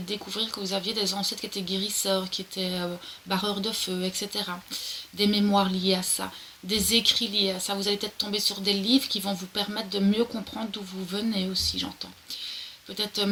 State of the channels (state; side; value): identical; both; correlation 1.00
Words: découvrir que vous aviez des ancêtres qui étaient guérisseurs, qui étaient barreurs de feu, etc. Des mémoires liées à ça, des écrits liés à ça. Vous allez peut-être tomber sur des livres qui vont vous permettre de mieux comprendre d'où vous venez aussi, j'entends. Peut-être